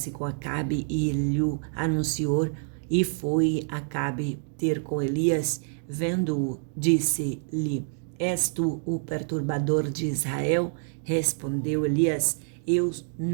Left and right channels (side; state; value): left; silent; 59 dB below the other